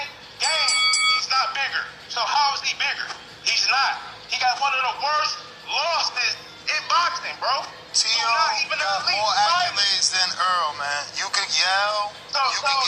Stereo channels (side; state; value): both; identical; correlation 1.00